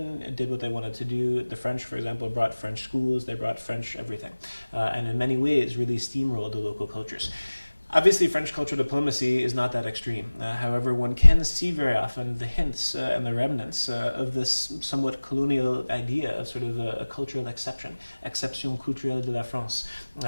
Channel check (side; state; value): both; inverted; correlation -1.00